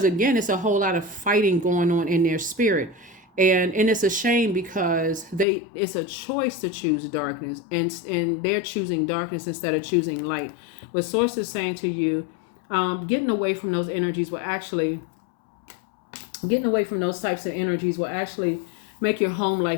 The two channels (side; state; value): right; drops out; at 5.5 s